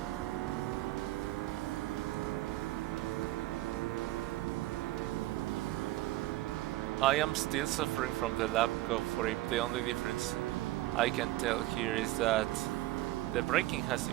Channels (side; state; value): left; quieter; 16.7 dB